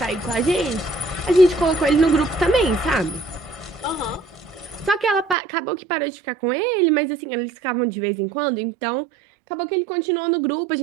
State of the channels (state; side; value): drops out; left; at 5.4 s